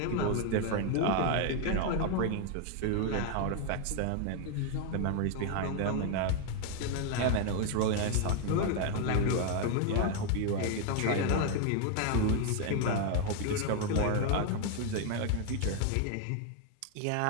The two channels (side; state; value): both; different; correlation 0.00